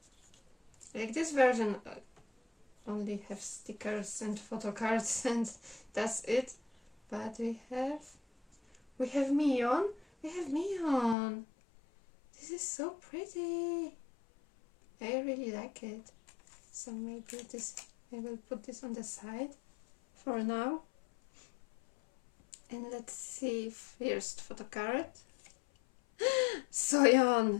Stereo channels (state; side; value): drops out; right; at 11.2 s